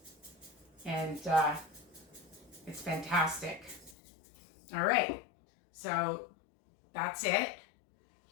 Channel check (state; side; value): drops out; right; at 4.0 s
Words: And it's fantastic. All right, so that's it.